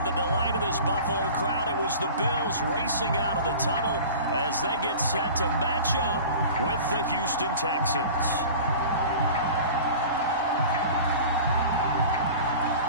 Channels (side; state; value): both; inverted; correlation -0.39